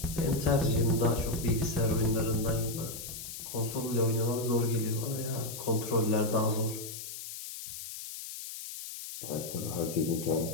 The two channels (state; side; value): noise; left; hiss, 9 dB below the sound